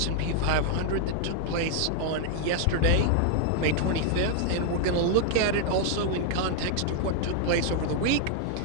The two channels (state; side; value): different; both; correlation 0.00